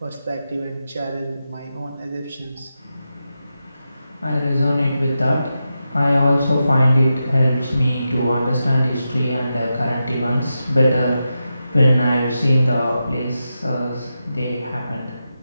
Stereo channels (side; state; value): both; inverted; correlation -0.89